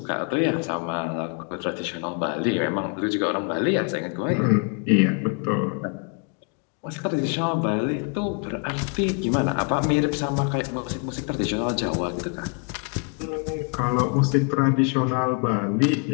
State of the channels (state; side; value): quieter; right; 37.5 dB